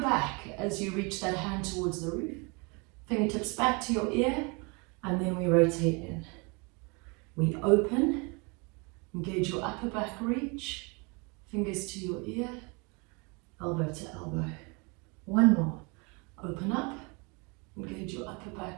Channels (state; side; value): quieter; left; 30.5 dB